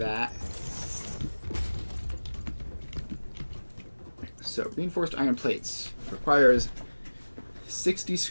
So reinforced iron plates requires 60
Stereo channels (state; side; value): inverted; both; correlation -1.00